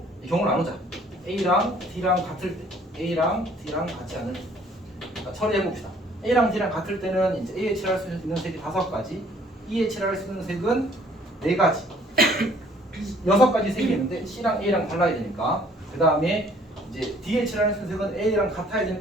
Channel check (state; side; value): normal; both; correlation 0.59